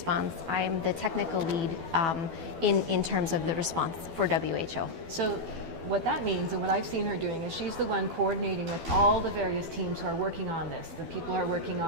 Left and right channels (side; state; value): left; late; 12 ms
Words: I'm the technical lead in terms of the response for WHO. So what that means, and what I've seen her doing, is she's the one coordinating with all the various teams who are working on this, the people who are working